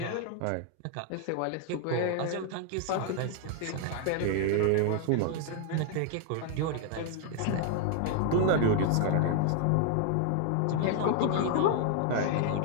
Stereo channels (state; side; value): different; both; correlation 0.00